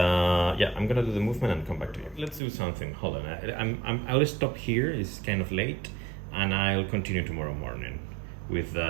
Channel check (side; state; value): left; drops out; at 2.4 s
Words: I'm gonna do the movement and come back to you. Let's do something. Hold on. I'll stop here. It's kind of late, and I'll continue tomorrow morning with